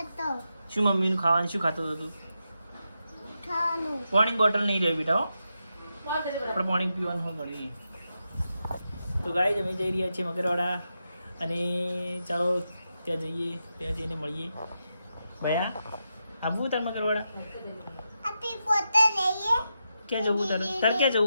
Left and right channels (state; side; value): inverted; both; correlation -0.87